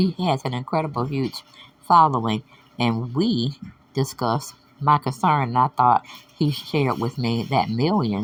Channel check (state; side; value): identical; both; correlation 1.00